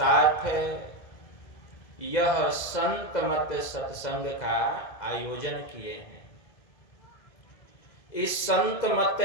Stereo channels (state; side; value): late; right; 2.0 ms